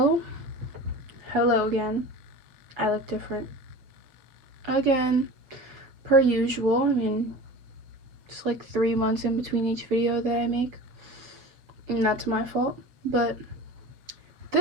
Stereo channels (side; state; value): left; late; 7.3 ms